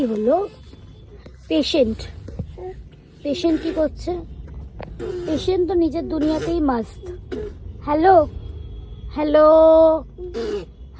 হলো পেশেন্ট। পেশেন্ট কি করছে? পেশেন্ট তো নিজের দুনিয়াতেই মাস্ত। হ্যালো হ্যালো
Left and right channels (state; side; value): identical; both; correlation 1.00